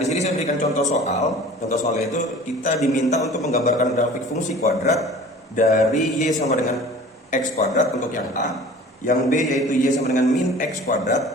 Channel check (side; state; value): both; normal; correlation 0.44